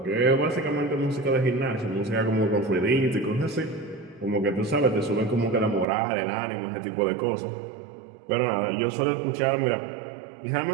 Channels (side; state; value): left; drops out; at 5.9 s